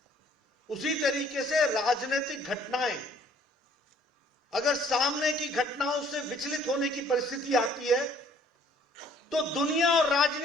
उसी तरीके से राजनीतिक घटनाएं अगर सामने की घटनाओं से विचलित होने की परिस्थिति आती है तो दुनिया और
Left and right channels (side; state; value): both; normal; correlation 0.59